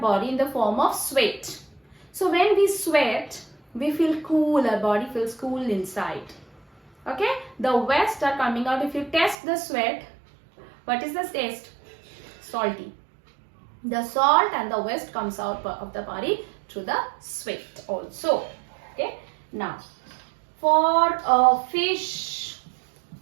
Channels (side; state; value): left; drops out; at 9.3 s